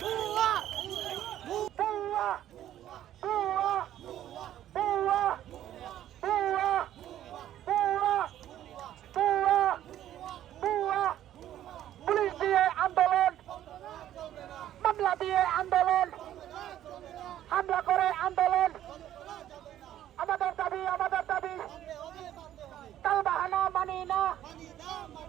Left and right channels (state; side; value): quieter; left; 12.0 dB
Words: পুলিশ দিয়ে আন্দোলন, মামলা দিয়ে আন্দোলন, হামলা করে আন্দোলন, আমাদের দাবি তালবাহানা মানি না,